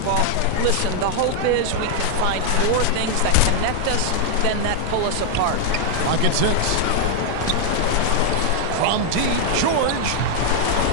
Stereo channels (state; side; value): different; both; correlation 0.00